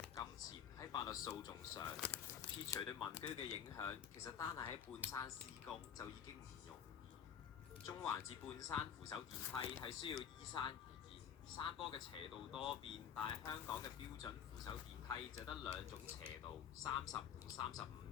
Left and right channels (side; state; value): right; quieter; 8.4 dB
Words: 金錢喺法律訴訟上。撇除對民居嘅影響，其實單係喺半山施工就已經唔容易。中環至半山扶手電梯係需要依山而建，山坡嘅斜度多變，但係香港嘅標準扶手電梯就得兩種斜度，30同35